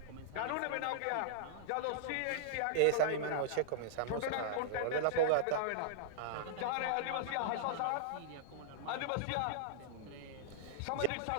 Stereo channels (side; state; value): both; different; correlation -0.02